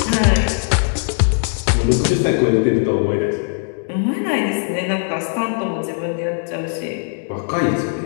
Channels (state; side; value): silent; right; digital silence